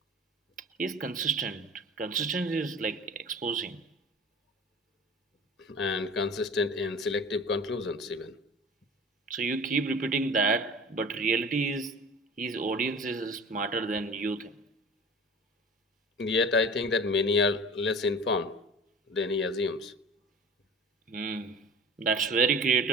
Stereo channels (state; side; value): normal; both; correlation 0.40